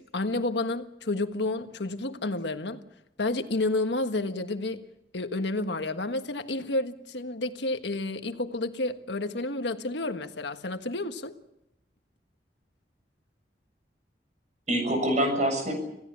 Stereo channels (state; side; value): normal; both; correlation 0.16